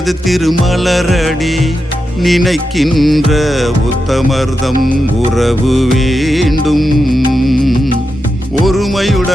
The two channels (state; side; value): normal; both; correlation 0.88